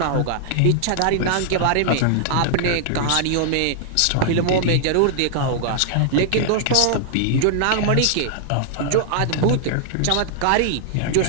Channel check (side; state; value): both; different; correlation -0.01